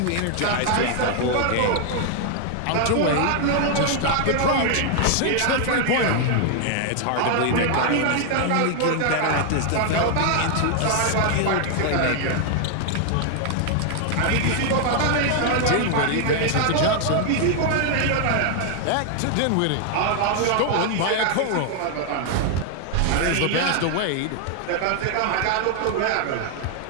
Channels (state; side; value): different; both; correlation 0.00